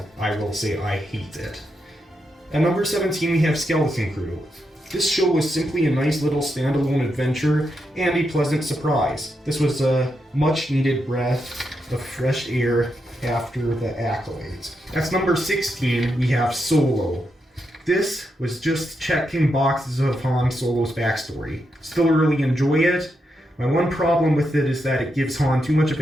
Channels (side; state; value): both; normal; correlation 0.84